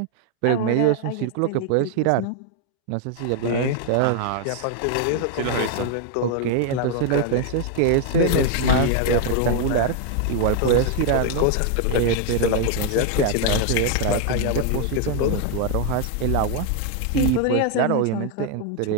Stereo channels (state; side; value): different; both; correlation 0.00